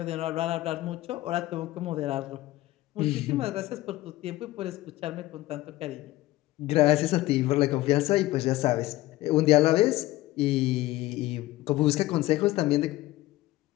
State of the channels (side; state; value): right; quieter; 17.1 dB